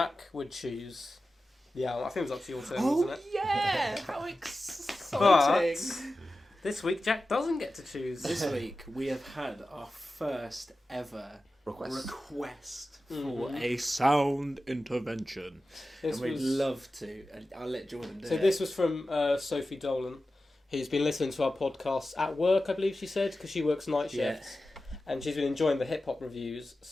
would choose the album. I think it was up to your turn, wasn't it? Yeah! How exciting! But This week, Jack doesn't get to choose. This week we have had our first ever request For a sound intervention. and we'd love to. And I'll let Jordan do it. So this was from Sophie Dolan, who's been listening to our podcast at work, I believe she said, because she works night shifts. And she's been enjoying the hip-hop reviews.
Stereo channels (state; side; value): normal; both; correlation 0.94